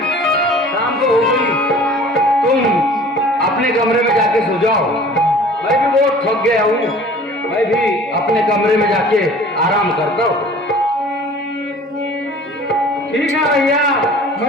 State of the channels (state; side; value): normal; both; correlation 0.46